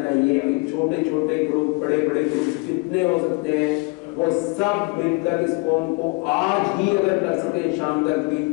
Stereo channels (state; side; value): quieter; right; 29.3 dB